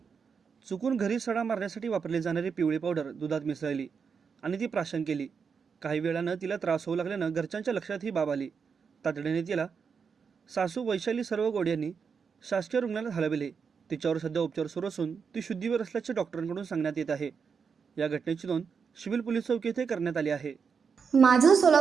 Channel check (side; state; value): left; quieter; 6.0 dB